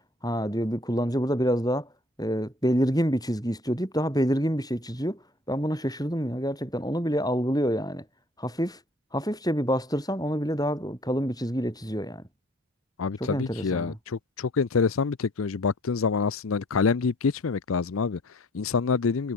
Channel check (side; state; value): both; normal; correlation 0.55